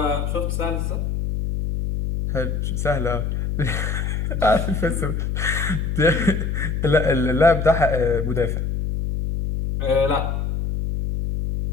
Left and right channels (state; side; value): noise; left; hum, 1 dB below the sound